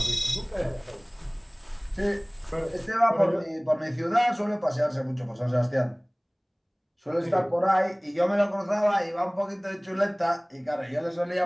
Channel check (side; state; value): both; identical; correlation 1.00